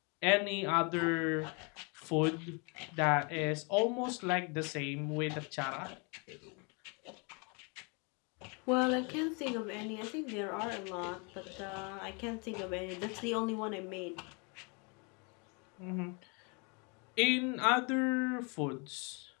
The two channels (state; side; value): quieter; right; 33.2 dB